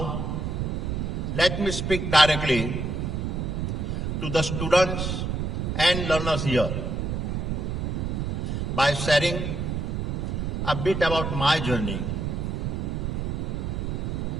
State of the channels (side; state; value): right; noise; rumble, 1 dB below the sound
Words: let me speak directly to the students and learners here by sharing a bit about my journey.